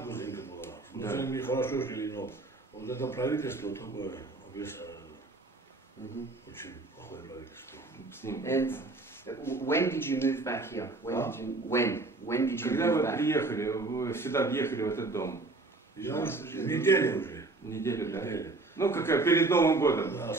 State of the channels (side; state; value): left; quieter; 3.3 dB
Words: грузинка была. С грузинами хорошо жили, но вот это правительство такое, очень плохое правительство. And when did you move back here? When did you Когда move вы back? приехали, вы сюда въехали в этот дом? Неделю уже. Неделю, да? Ну, какая, перед Новым годом. Да,